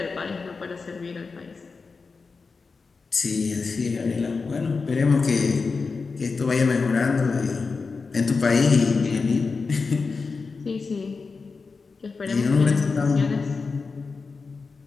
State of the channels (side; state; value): right; quieter; 4.5 dB